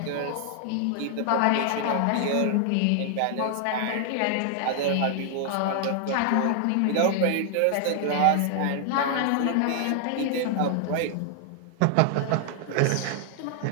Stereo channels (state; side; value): different; both; correlation 0.00